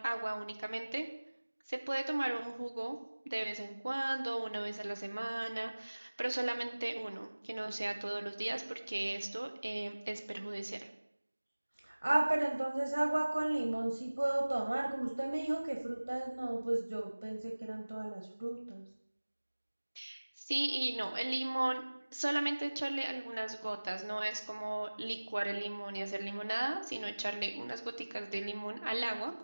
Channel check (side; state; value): both; inverted; correlation -1.00